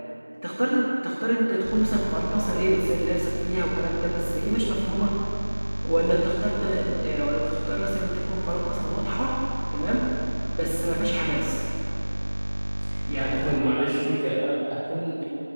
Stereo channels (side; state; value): both; inverted; correlation -1.00